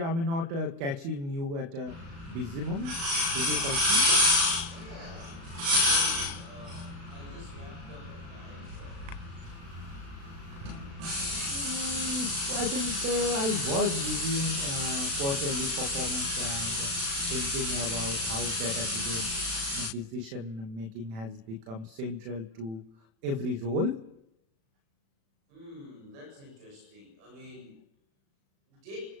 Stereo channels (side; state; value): left; late; 36 ms